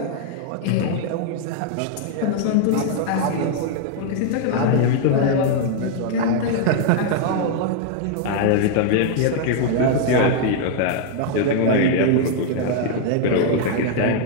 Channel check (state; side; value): different; both; correlation 0.00